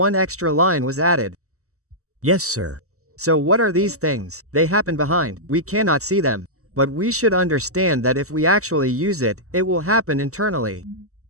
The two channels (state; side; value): late; left; 0.64 ms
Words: extra line was added. Yes, sir. So what are these things? They happen behind, we cannot see them. But we should understand that if we actually use it, it will happen internally.